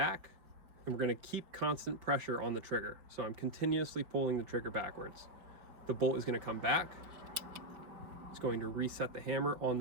and we're going to keep constant pressure on the trigger. So I'm continuously pulling the trigger backwards. The bolt is going to come back. It's going to reset the hammer on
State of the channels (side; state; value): left; late; 5.2 ms